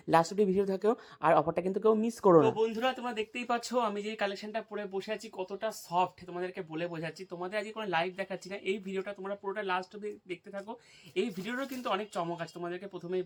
লাস্ট অব্দি ভিডিও থাকেও, আর অফারটা কিন্তু কেউ মিস করো না। তো বন্ধুরা, তোমরা দেখতেই পাচ্ছ আমি যে কালেকশনটা পরে বসে আছি কতটা সফট, তোমাদেরকে বলে বোঝাচ্ছি। তোমাদের আজকে কোনো লাইভ দেখাচ্ছি না, এই ভিডিওটা তোমরা পুরোটা লাস্ট অব্দি দেখতে থাকো। এই ভিডিওরও কিন্তু অনেক চমক আছে, তোমাদেরকে প্রথমেই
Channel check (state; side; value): identical; both; correlation 1.00